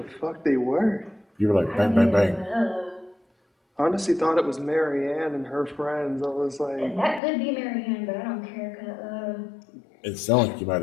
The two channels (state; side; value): drops out; right; at 7.2 s